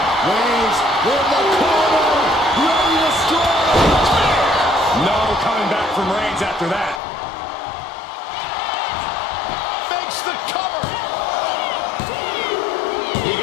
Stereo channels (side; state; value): right; drops out; at 7.0 s